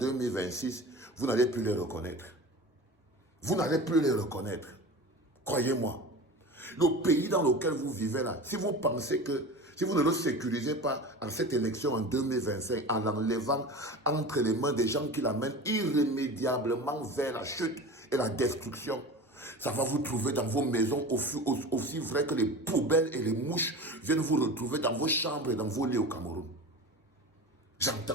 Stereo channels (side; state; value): both; normal; correlation 0.33